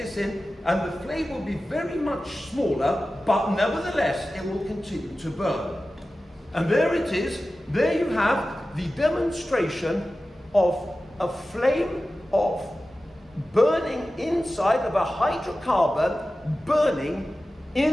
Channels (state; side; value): normal; both; correlation 0.95